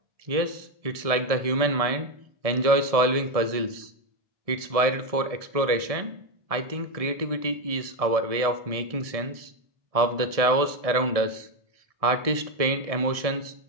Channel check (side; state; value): left; late; 1.7 ms